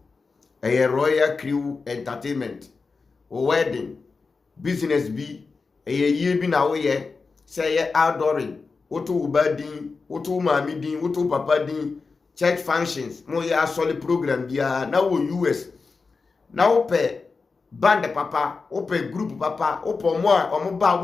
Royal Crew Entertainment wo wedding business bi ye bi na wo ye say ye outdooring woto ubadin woto mami din woto papa din church functions mo ye asoli program bia na wo US na wo pe band papa wo pe group papa wo po mo a omo ba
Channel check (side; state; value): right; quieter; 4.5 dB